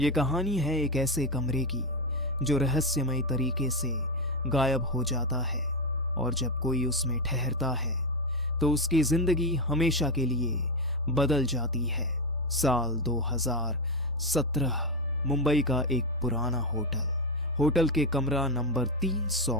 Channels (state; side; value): normal; both; correlation 0.10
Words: कहानी है एक ऐसे कमरे की जो रहस्यमय तरीके से गायब हो जाता है और जब कोई उसमें ठहरता है तो उसकी जिंदगी हमेशा के लिए बदल जाती है। साल 2017 मुंबई का एक पुराना होटल के कमरा नंबर 300